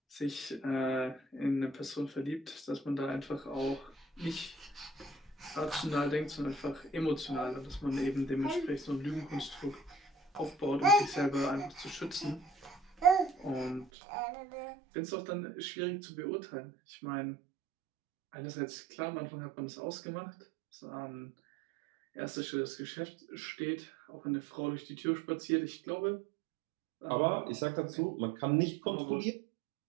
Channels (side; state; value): left; drops out; at 13.9 s